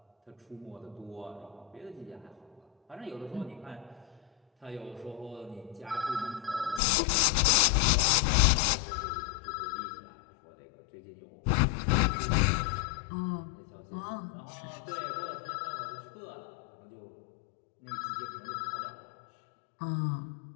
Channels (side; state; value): right; drops out; at 6.8 s